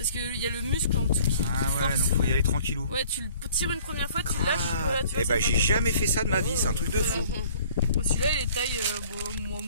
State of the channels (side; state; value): both; inverted; correlation -0.54